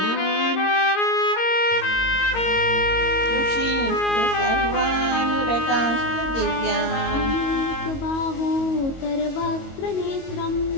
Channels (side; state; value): right; late; 22 ms